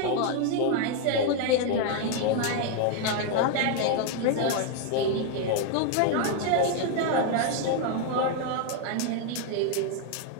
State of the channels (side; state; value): both; different; correlation 0.01